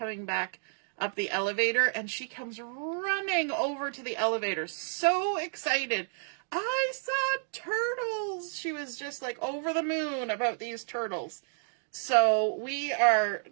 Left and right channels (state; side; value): silent; left; digital silence